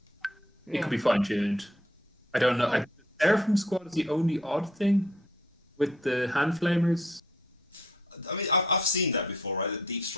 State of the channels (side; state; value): both; normal; correlation 0.64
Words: Yeah. could be fine tuned. I don't know. Oh. Seraphim Squad is the only odd thing with the hand flamers. I mean, I've seen that before, right? The deep